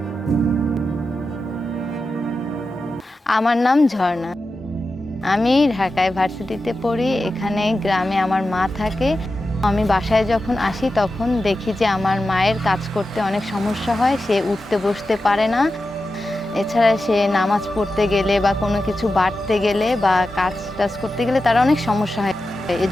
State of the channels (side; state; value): both; normal; correlation 0.91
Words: আমার নাম ঝর্ণা। আমি ঢাকায় ভার্সিটিতে পড়ি। এখানে গ্রামে আমার মা থাকে। আমি বাসায় যখন আসি তখন দেখি যে আমার মায়ের কাজ করতে অনেক সমস্যা হয়। সে উঠতে বসতে পারে না। এছাড়া সে নামাজ পড়তে গেলে বা কোনো কিছু বাটতে গেলে বা কাজ-টাজ করতে গেলে তার অনেক সমস্যা হয়।